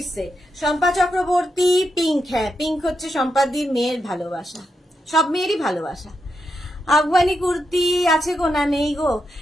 set. Shampa Chakraborty pink, হ্যাঁ পিঙ্ক হচ্ছে সম্পাদির মেয়ের ভালোবাসা, সব মেয়েরই ভালোবাসা। আফগানি কুর্তি আছে গো, না নেই গো।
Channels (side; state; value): both; normal; correlation 0.84